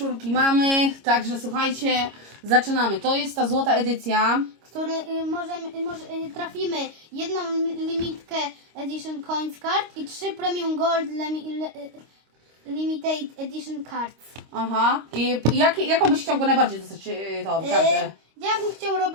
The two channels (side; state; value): left; late; 26 ms